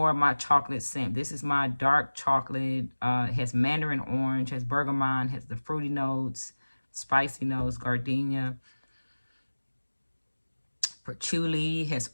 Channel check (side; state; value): both; inverted; correlation -1.00